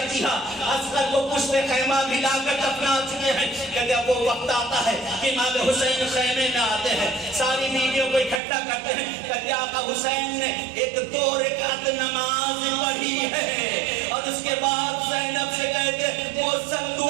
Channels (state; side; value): drops out; left; at 8.4 s